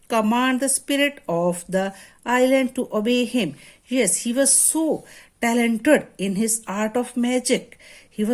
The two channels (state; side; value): identical; both; correlation 1.00